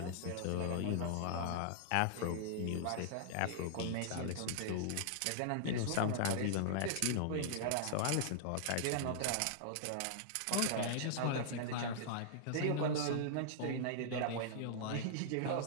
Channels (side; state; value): both; different; correlation -0.01